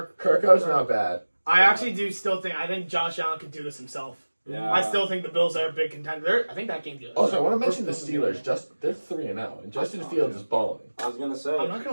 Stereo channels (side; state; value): both; inverted; correlation -1.00